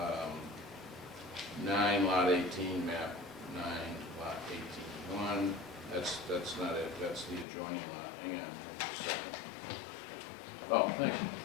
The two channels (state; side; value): drops out; right; at 7.5 s